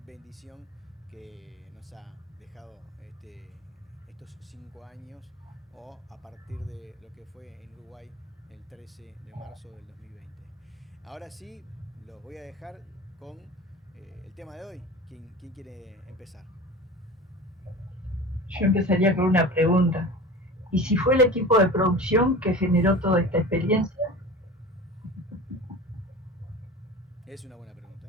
bendición que nos ha dejado estos 5 años, o a partir de lo que fue en Uruguay el 13 de marzo del 2020. Ahora sí, los voy a dejar con el tema de hoy. ¿Quién quiere empezar? Yo empezaría con una pregunta. ¿Y si fue el equipo de producción que generó toda esta experiencia? Es una buena pregunta.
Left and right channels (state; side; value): normal; both; correlation 0.35